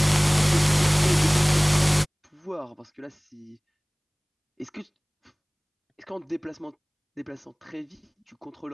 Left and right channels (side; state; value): both; identical; correlation 1.00